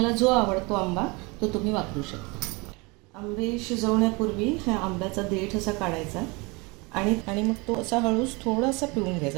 जो आवडतो आंबा तो तुम्ही वापरू शकता. आंबे शिजवण्यापूर्वी ह्या आंब्याचा देठ असा काढायचा आणि मग तो असा हळूच थोडासा पिळून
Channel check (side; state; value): left; quieter; 27.2 dB